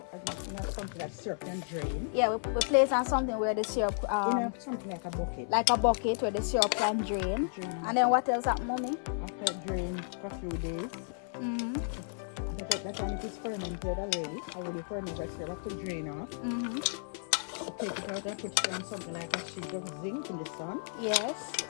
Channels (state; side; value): silent; right; 56 dB below the other